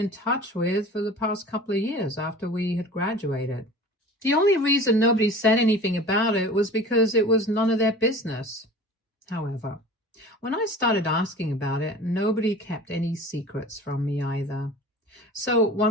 touch with for the past couple of years after we had graduated. The only reason nobody said anything about it was because it was none of their business. However, when I started asking about it, nobody kept any secrets from me either. So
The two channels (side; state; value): both; normal; correlation 0.40